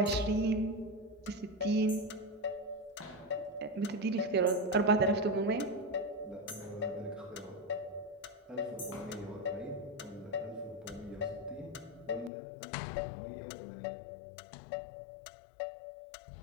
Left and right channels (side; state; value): right; drops out; at 12.3 s